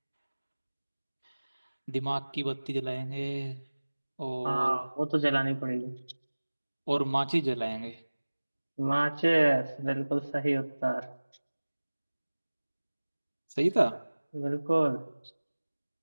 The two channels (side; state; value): both; inverted; correlation -1.00